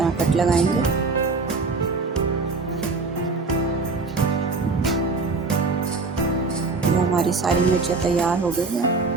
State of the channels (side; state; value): left; quieter; 4.0 dB